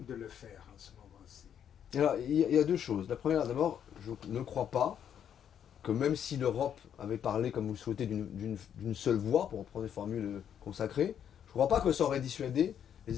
de le faire en ce moment-ci. Alors, il y a deux choses. La première, d'abord, je ne crois pas que même si l'Europe avait parlé, comme vous le souhaitez, d'une seule voix, pour reprendre des formules consacrées, je ne crois pas que ça aurait dissuadé les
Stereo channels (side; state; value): right; quieter; 9.0 dB